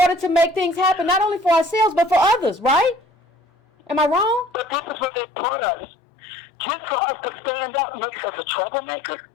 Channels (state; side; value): drops out; right; at 5.1 s